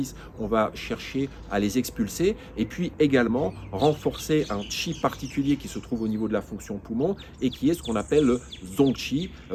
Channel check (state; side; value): identical; both; correlation 1.00